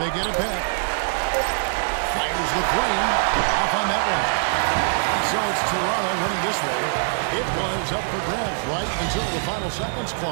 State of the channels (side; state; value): left; silent; 63 dB below the other